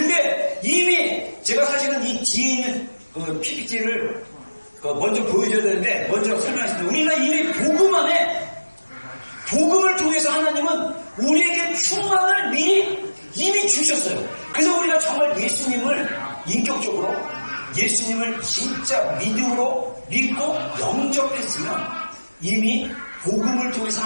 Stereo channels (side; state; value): both; inverted; correlation -1.00